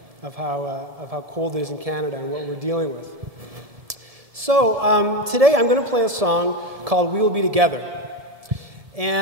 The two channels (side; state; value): left; late; 1.7 ms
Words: of how cold it is in Canada and what we're dealing with. So today I'm going to play a song called "We Will Be Together,"